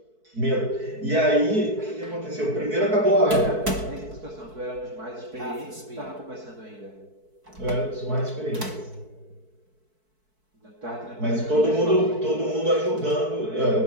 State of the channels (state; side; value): late; left; 4.6 ms